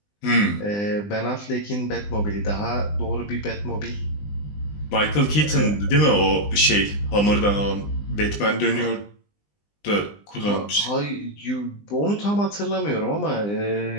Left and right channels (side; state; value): right; late; 20 ms